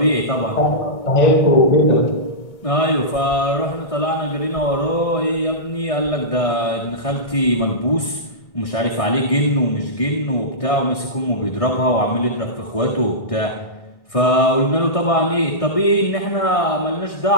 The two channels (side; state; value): right; late; 1.6 ms